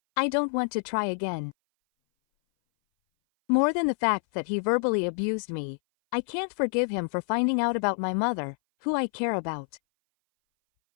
I don't want to try again. More than the fact that he verbally abused me, I can't forgive him for finding out about my mother, who I care about.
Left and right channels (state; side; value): silent; right; 58 dB below the other